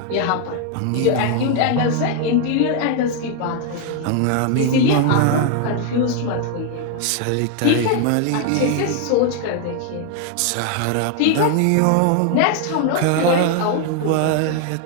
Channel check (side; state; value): both; different; correlation 0.01